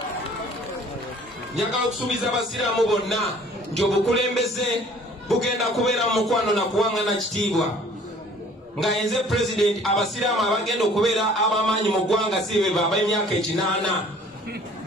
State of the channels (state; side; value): normal; both; correlation 0.53